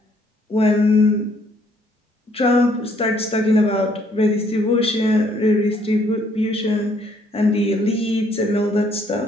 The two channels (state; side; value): normal; both; correlation 0.66